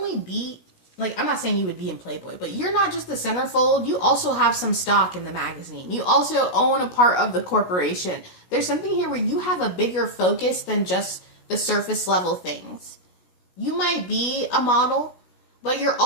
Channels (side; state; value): right; late; 17 ms